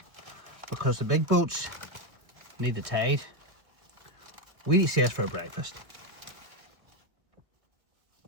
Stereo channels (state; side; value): late; left; 1.6 ms